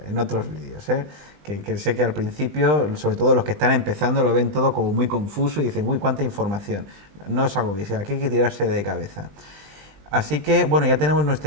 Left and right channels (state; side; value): late; left; 20 ms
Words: otros vídeos. Que sé que al principio, sobre todo los que están empezando, lo ven todo como muy confuso y dicen, uy, cuánta información. No os agobiéis, aquí hay que tirarse de cabeza. Así que, bueno, ya tenemos